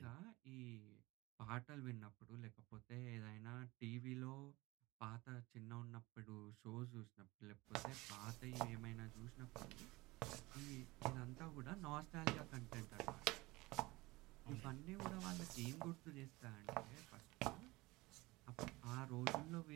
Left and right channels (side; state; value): left; quieter; 21.4 dB